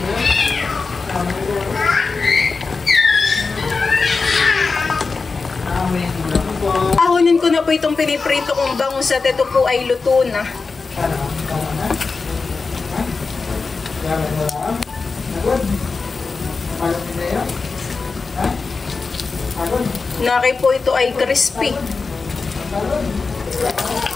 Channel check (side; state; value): right; quieter; 4.3 dB